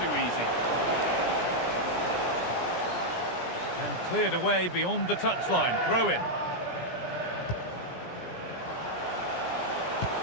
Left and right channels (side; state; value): right; late; 17 ms